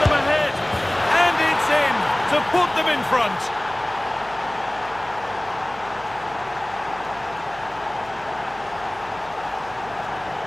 them ahead, and it's in to put them in front.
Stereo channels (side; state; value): right; noise; hum, 21 dB below the sound